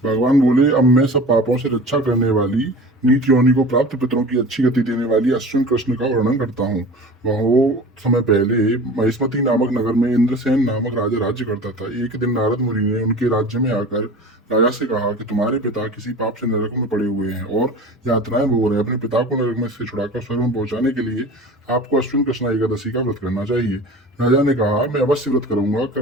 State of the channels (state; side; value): normal; both; correlation 0.38